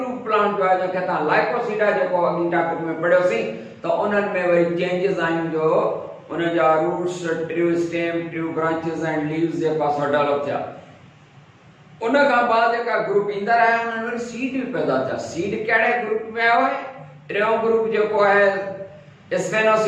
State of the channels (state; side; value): identical; both; correlation 1.00